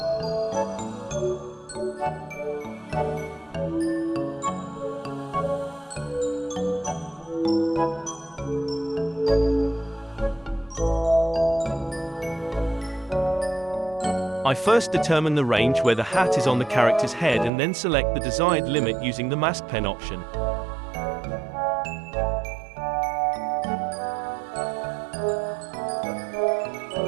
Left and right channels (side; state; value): left; drops out; at 17.5 s